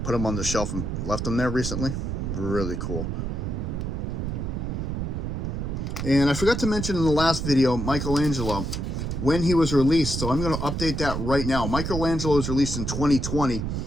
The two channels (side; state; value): right; noise; rumble, 3 dB below the sound